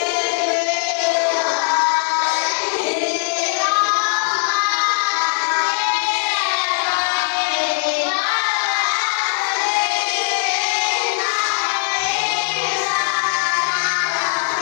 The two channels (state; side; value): silent; right; digital silence